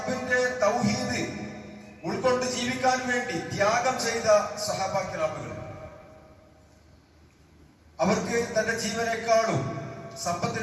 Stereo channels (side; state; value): both; identical; correlation 1.00